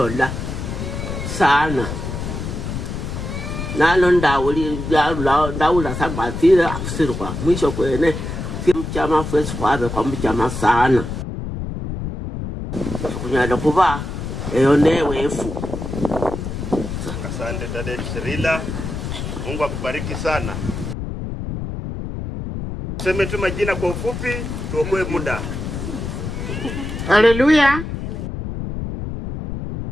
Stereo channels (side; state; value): left; noise; rumble, 6 dB below the sound